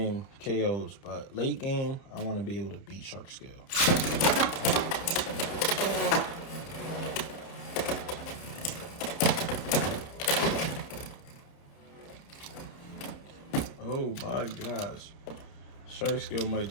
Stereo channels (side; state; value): right; late; 30 ms